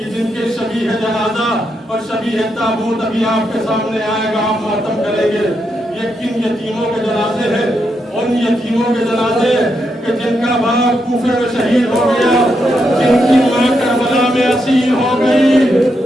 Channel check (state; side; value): normal; both; correlation 0.82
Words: جن کے شبیہ جنازہ اور شبیہ تابوت ابھی آپ کے سامنے آئے گا, آپ ماتم کریں گے. یہ کن یتیموں کے جنازے ہیں؟ ان یتیموں کے جنازے کہ جن کا باپ کوفے میں شہید ہو گیا, جن کی ماں کربلا میں اسیر ہو گئی.